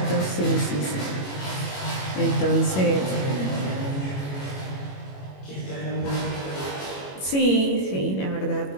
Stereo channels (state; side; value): late; right; 21 ms